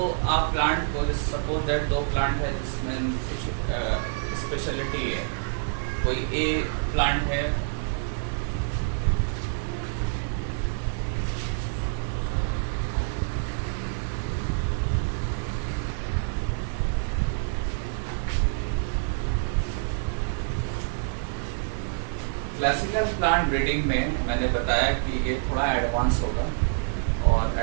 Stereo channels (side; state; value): left; silent; digital silence